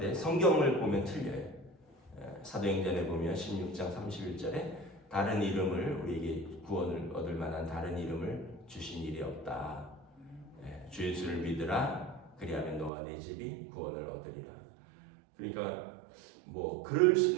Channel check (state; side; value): drops out; left; at 12.9 s